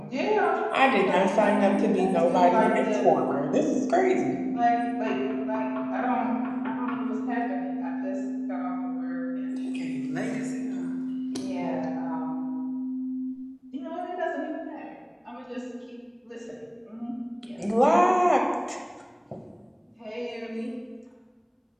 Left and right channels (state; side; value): identical; both; correlation 1.00